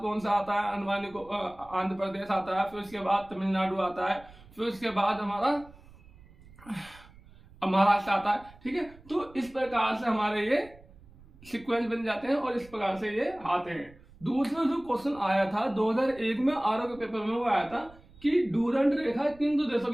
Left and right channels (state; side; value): noise; right; rumble, 23 dB below the sound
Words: कौन सा आता है, अंडमान को आंध्र प्रदेश आता है, फिर उसके बाद तमिलनाडु आता है, फिर उसके बाद हमारा महाराष्ट्र आता है। ठीक है, तो इस प्रकार से हमारे ये सीक्वेंस बन जाते हैं और इस प्रकार से ये आते हैं। दूसरा जो क्वेश्चन आया था 2001 में आरओ के पेपर में, वो आया था कि डूरंड रेखा किन दो देशों